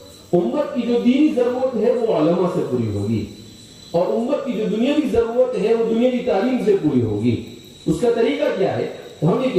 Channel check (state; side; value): identical; both; correlation 1.00